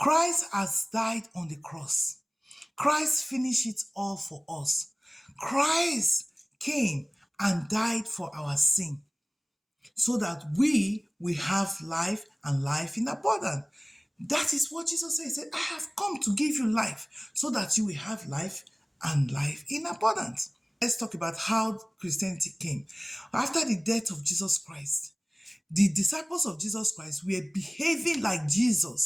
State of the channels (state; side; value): identical; both; correlation 1.00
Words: has died on the cross. Christ finished it all for us. Christ came and died for our sin so that we will have life and life in abundance. That is what Jesus said. He said, I have come to give you life so that you will have life and life in abundance. Let's talk about how Christianity came. After the death of Jesus Christ, the disciples of Jesus Christ were behaving like